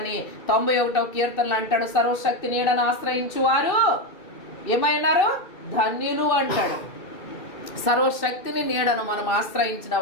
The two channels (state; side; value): late; right; 2.6 ms